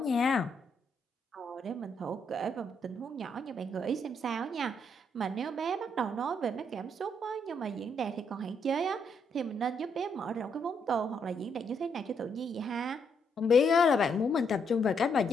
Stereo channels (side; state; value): both; normal; correlation 0.75